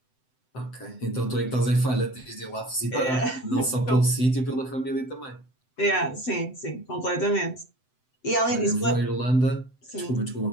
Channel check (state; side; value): late; right; 7.8 ms